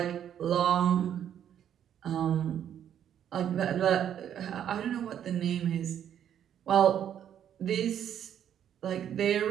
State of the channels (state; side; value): quieter; left; 9.7 dB